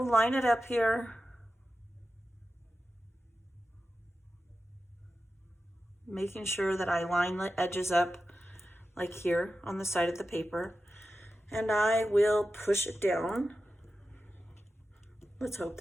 line it up here. Making sure that I line the edges up like here on the side of the paper. And I will push it down. Let's hope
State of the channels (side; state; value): both; normal; correlation 0.92